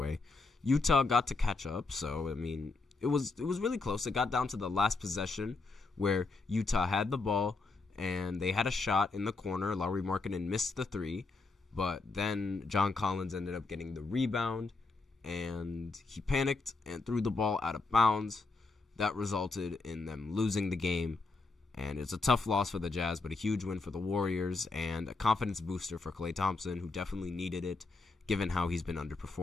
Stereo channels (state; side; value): quieter; right; 3.7 dB